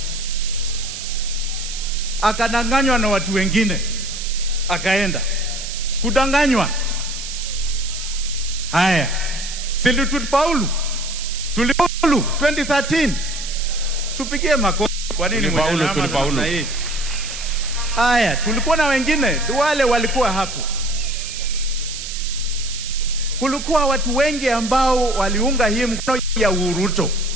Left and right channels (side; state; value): right; noise; hiss, 8 dB below the sound